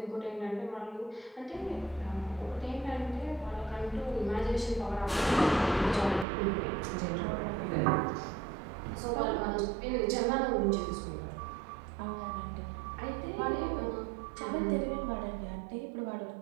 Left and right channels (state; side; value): drops out; left; at 6.2 s